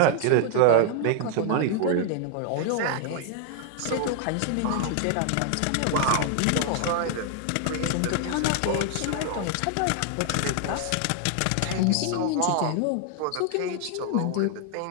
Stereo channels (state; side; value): different; both; correlation 0.00